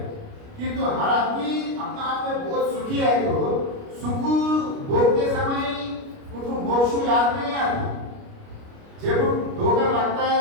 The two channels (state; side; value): late; left; 29 ms